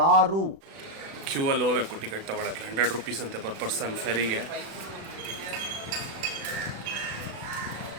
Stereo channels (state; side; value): late; left; 36 ms